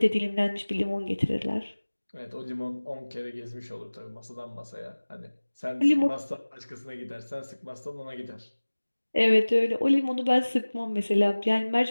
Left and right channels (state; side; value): inverted; both; correlation -1.00